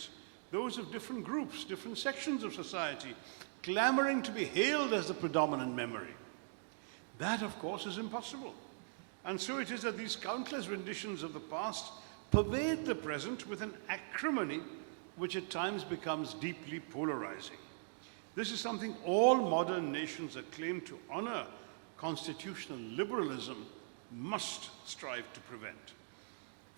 those of different groups, different sections of society, clamoring to be hailed as the predominant memory. That, of course, is impossible. And so it is that these countless renditions of the past pervade the present with an acrimony which at times becomes deeply polarizing. This is something all modern nations that claim to honor constitutional liberalism must strive to prevent.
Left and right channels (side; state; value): left; silent; digital silence